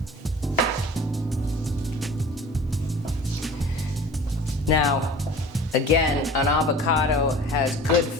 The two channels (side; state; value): both; normal; correlation 0.43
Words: Now, again, an avocado has good